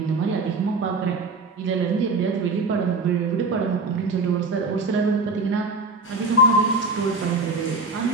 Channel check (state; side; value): quieter; left; 3.3 dB